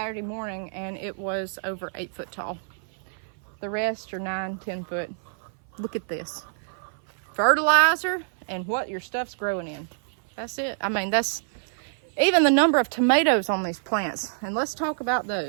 morning, and it was over 8 foot tall. The rest are 9, 10 foot. Look at this. Fertilizer and what your stuff's growing in. That's it. I mean, that's even the number of tomatoes on these plants. And let's talk about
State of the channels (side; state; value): left; silent; 57 dB below the other